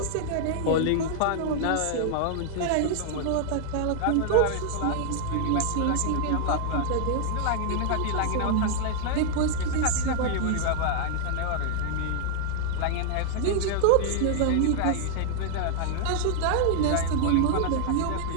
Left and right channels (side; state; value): both; different; correlation -0.01